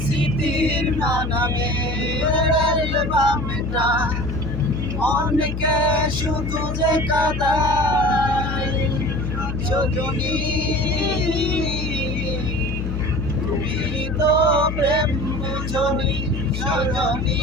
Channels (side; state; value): left; noise; hum, 4 dB below the sound